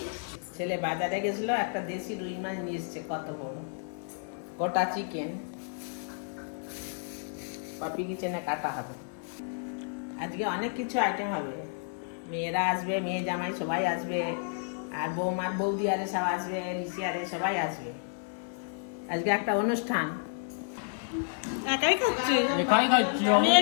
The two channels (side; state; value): right; silent; 57 dB below the other